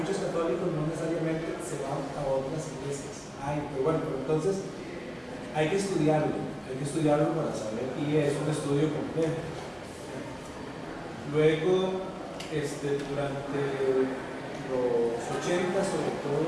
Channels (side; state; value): both; identical; correlation 1.00